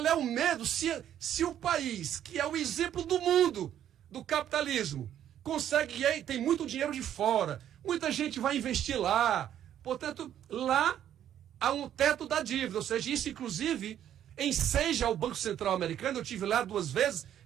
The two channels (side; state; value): left; quieter; 10.7 dB